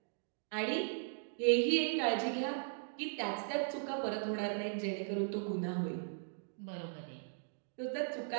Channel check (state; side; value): silent; left; digital silence